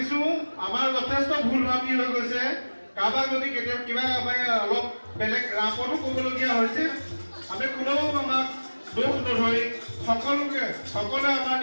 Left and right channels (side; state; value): both; inverted; correlation -1.00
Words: আমাৰ যথেষ্ট ভুল ভ্ৰান্তি হৈ গৈছে। কাৰোবাক যদি কেতিয়াবা কিবা অলপ বেলেগ ৰাপতো ক'বলগীয়া হৈছে আমি কোনেও আমাক দোষ নধৰি সকলোৱে আমাৰ